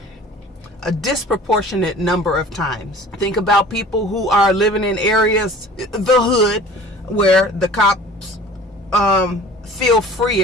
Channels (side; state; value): both; normal; correlation 0.45